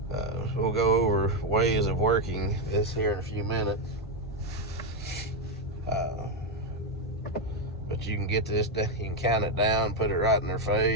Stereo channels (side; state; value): both; normal; correlation 0.06